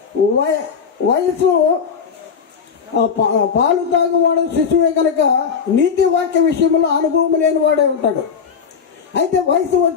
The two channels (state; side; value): quieter; right; 6.4 dB